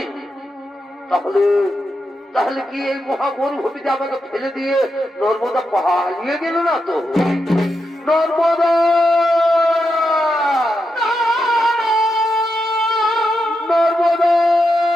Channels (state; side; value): normal; both; correlation 0.86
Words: তাহলে তাহলে কি এই মহামরুভূমিতে আমাকে ফেলে দিয়ে নর্মদা পালিয়ে গেল না তো? নর্মদা নর্মদা